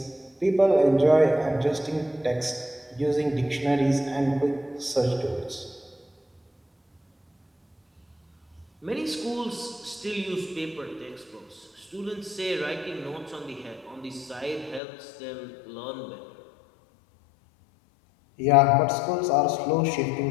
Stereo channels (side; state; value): right; drops out; at 14.8 s